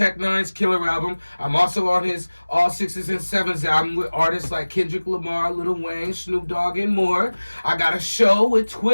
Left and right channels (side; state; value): both; inverted; correlation -1.00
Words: Nine's Killer album. I'm also on his All Sixes and Sevens album with artists like Kendrick Lamar, Lil Wayne, Snoop Dogg, and more. I got a show with